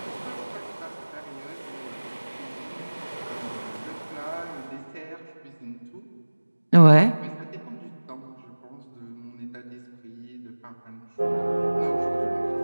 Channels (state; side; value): inverted; both; correlation -1.00